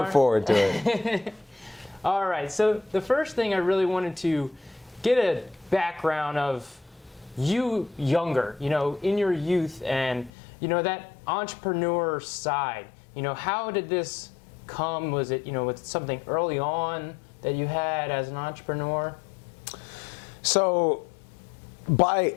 forward to it. All right, so the first thing I really wanted to get a background of you younger, in your youth, and, that entrepreneur side. How did this come? Was it, was it something early on that you had as an entrepreneur? So, by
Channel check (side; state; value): right; drops out; at 10.3 s